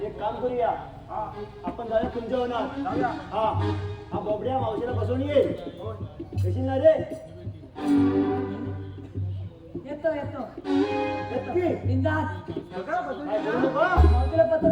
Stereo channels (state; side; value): identical; both; correlation 1.00